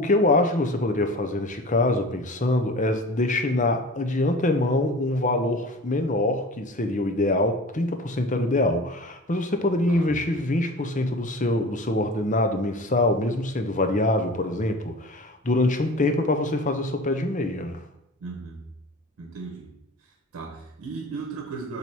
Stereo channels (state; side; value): normal; both; correlation 0.38